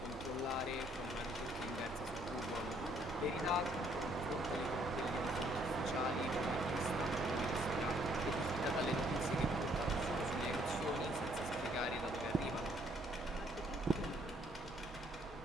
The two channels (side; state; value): both; normal; correlation 0.66